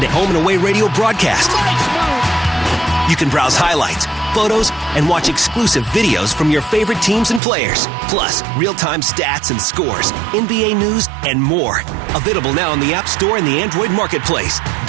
to home and away radio broadcast. You can browse highlights, photos, and watch exclusive videos from your favorite teams and players. Plus, real-time stats and scores, NBA news, and more. Available now on the App Store and the Android Marketplace.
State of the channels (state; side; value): drops out; left; at 7.4 s